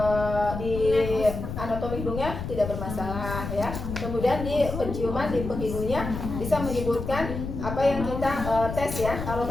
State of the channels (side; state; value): left; noise; rumble, 6 dB below the sound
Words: di anatomi hidungnya tidak bermasalah ya. Kemudian di penciuman di penghidungnya bisa menyebutkan apa yang kita tes ya. Kalau